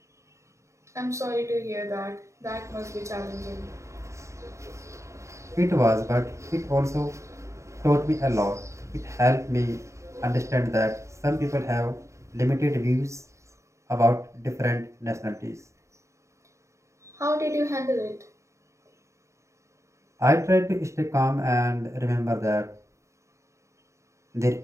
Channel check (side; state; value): left; late; 0.14 ms